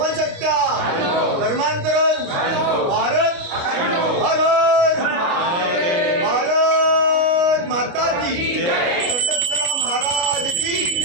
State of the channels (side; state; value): left; late; 29 ms